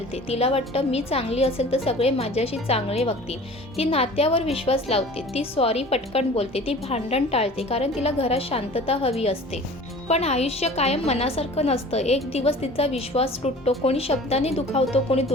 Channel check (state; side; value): normal; both; correlation 0.43